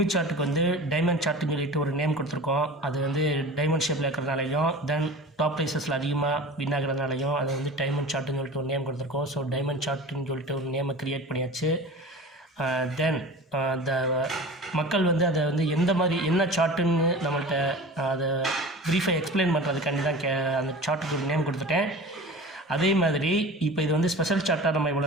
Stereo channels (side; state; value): both; normal; correlation 0.36